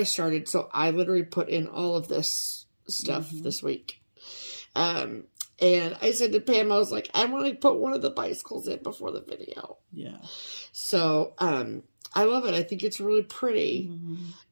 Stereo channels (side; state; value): both; inverted; correlation -1.00